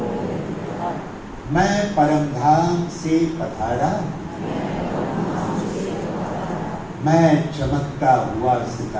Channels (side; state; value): both; identical; correlation 1.00